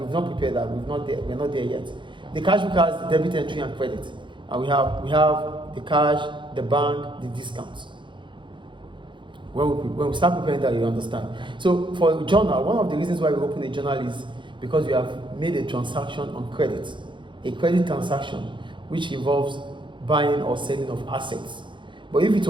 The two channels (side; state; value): left; late; 0.23 ms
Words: not prepared that. We're not there yet. The cash book has the debit entry and credit, and we have the cash, the bank, the discounts. When we start preparing that, you understand. So for a journal, one of the reasons why we open a journal is because we have made a transaction on credit, a credit transaction, which involves buying or selling of assets. But if it